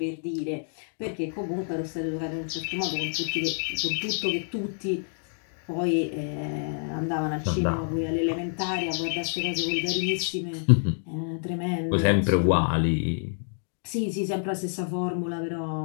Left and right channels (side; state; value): right; silent; digital silence